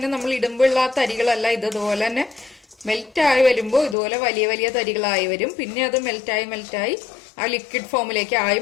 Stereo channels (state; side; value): drops out; right; at 4.0 s